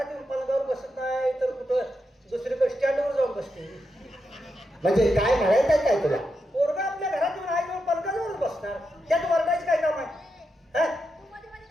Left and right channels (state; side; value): normal; both; correlation 0.85